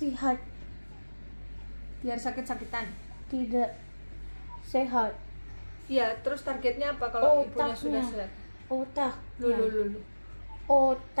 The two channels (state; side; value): inverted; both; correlation -1.00